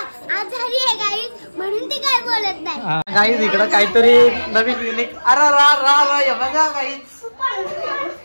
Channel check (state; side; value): inverted; both; correlation -1.00